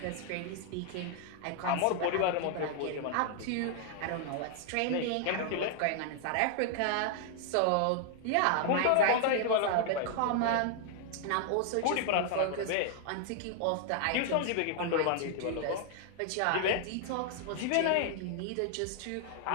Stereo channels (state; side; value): different; both; correlation 0.00